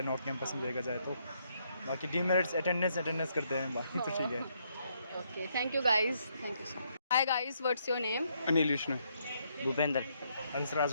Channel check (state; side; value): inverted; both; correlation -0.74